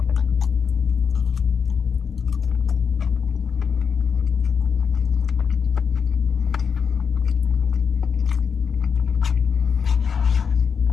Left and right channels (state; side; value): quieter; right; 6.3 dB